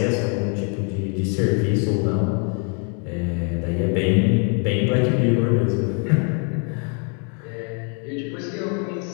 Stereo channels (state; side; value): quieter; right; 39.5 dB